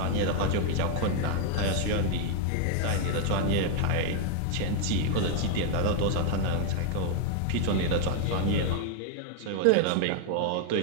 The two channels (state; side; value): different; both; correlation 0.00